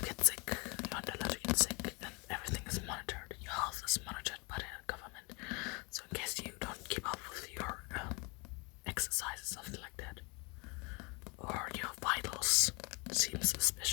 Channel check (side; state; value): right; quieter; 29.4 dB